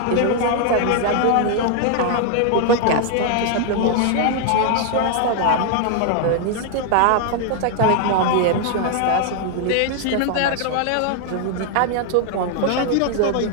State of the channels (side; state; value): both; different; correlation 0.00